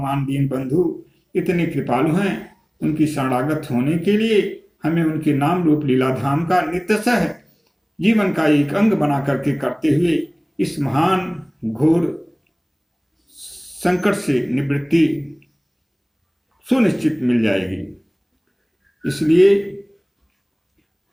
दीन बंधु इतने कृपालु हैं। उनकी शरणागत होने के लिए हमें उनके नाम रूप लीलाधाम का नित्यशः जीवन का एक अंग बना करके करते हुए इस महान घोर संकट से निवृत्ति सुनिश्चित मिल जाएगी। इसलिए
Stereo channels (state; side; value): identical; both; correlation 1.00